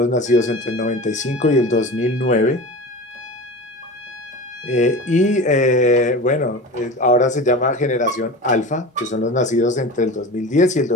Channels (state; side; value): normal; both; correlation 0.32